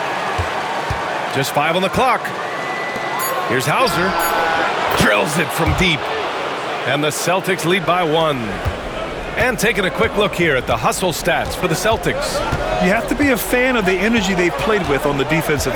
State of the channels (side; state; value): both; identical; correlation 1.00